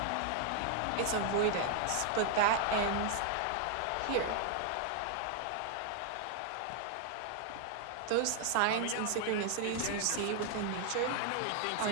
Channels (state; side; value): different; both; correlation 0.00